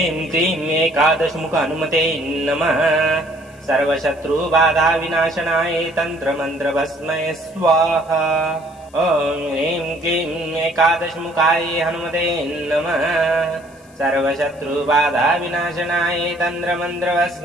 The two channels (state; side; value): noise; left; hiss, 28 dB below the sound